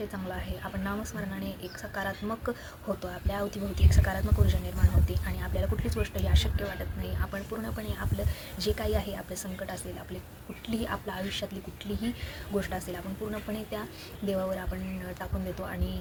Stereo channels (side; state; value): both; identical; correlation 1.00